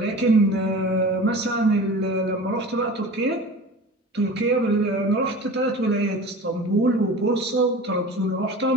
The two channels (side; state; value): both; normal; correlation 0.37